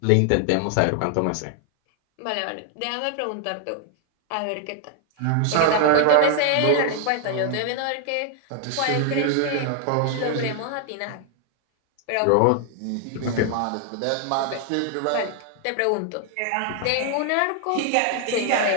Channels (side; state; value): both; different; correlation 0.00